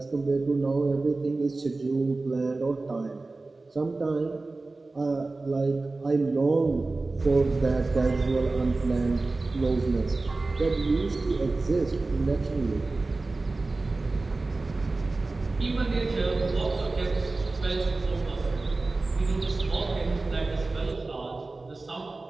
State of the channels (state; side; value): quieter; left; 3.4 dB